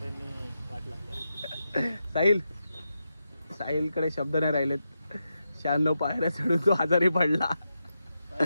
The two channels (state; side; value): inverted; both; correlation -0.87